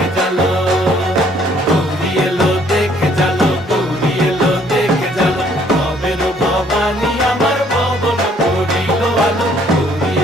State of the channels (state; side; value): normal; both; correlation 0.63